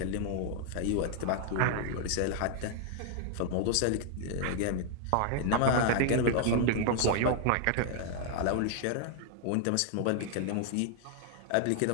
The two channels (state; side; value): different; both; correlation 0.00